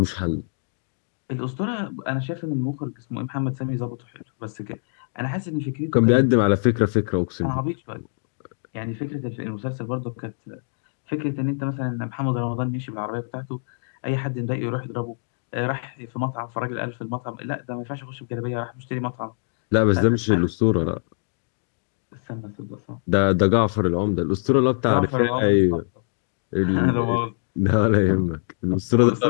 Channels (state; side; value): silent; right; digital silence